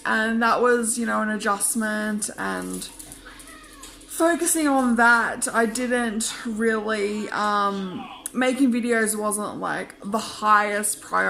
and that was, you know, an adjustment, and focusing on that, I didn't really, making videos wasn't like the highest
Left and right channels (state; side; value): identical; both; correlation 1.00